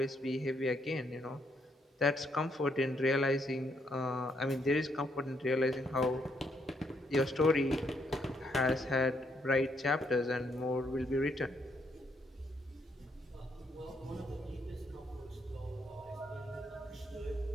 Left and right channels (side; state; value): both; normal; correlation 0.74